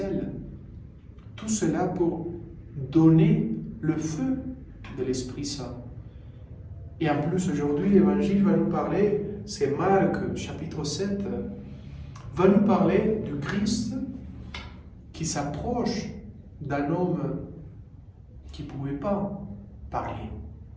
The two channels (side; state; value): both; identical; correlation 1.00